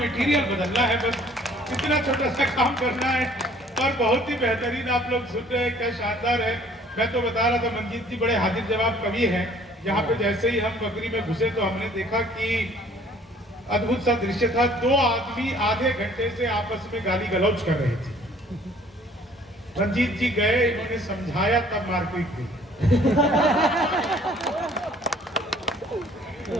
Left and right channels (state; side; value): normal; both; correlation 0.56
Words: बदलना है, बस इतना छोटा सा काम करना है। और बहुत ही बेहतरीन आप लोग सुन रहे हैं, क्या शानदार है। मैं तो बता रहा था, मंजीत जी बड़े हाजिर जवाब कवि हैं। यहाँ पे जैसे ही हम बकरी में घुसे तो हमने देखा कि अद्भुत सा दृश्य था। 2 आदमी आधे घंटे से आपस में गाली गलौज कर रहे थे। मंजीत जी गए, इन्होंने समझाया, तब मारपीट हुई।